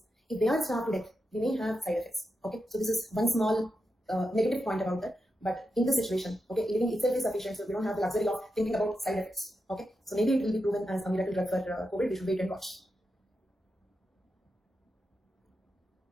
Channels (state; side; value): normal; both; correlation 0.88